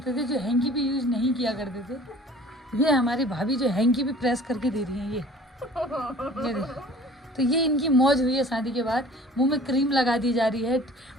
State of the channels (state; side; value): normal; both; correlation 0.48